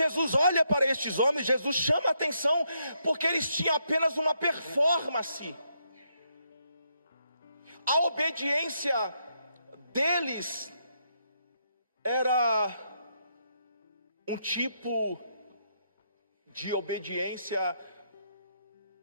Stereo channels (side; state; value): both; inverted; correlation -0.77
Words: olha para estes homens, Jesus chama a atenção porque eles tinham apenas uma performance. A obediência deles era um tipo de obediência